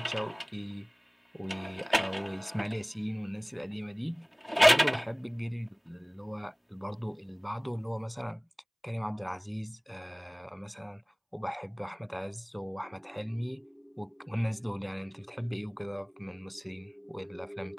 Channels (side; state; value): both; identical; correlation 1.00